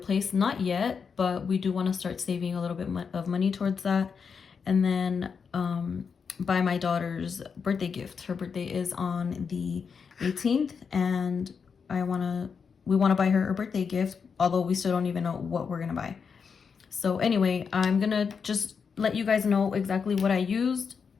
Not yet, but we do want to start saving a little bit of money towards that. And then buy my daughter's birthday gift. Her birthday is on the 18th, and we want to buy her a birthday gift, although we still don't even know what we're gonna buy. So anyway, I'm gonna just let you guys know exactly what I used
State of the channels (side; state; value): right; quieter; 6.0 dB